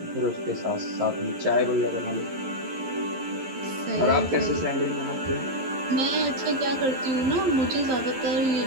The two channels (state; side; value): late; left; 11 ms